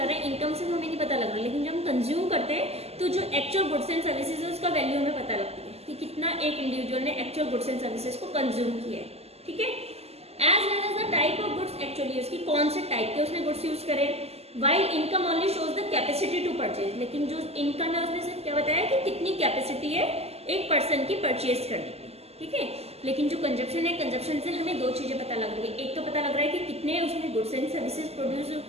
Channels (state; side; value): late; left; 0.30 ms